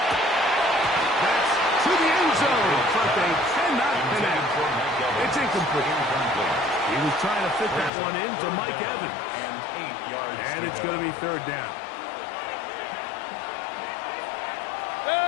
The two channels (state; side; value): drops out; right; at 7.9 s